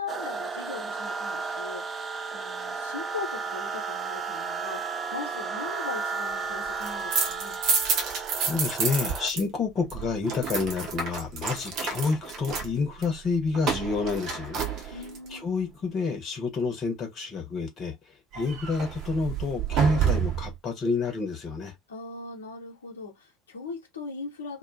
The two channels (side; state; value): both; normal; correlation 0.54